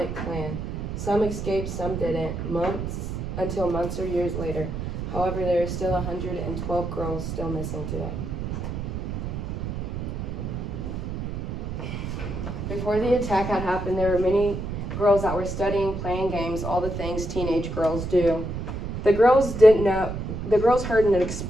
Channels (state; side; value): noise; right; rumble, 5 dB below the sound